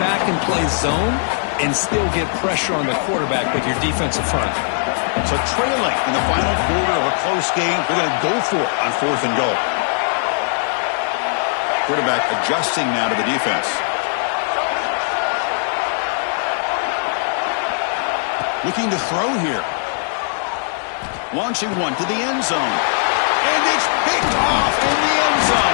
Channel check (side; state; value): right; silent; digital silence